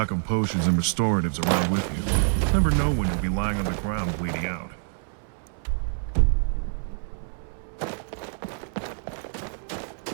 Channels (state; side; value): silent; left; 61 dB below the other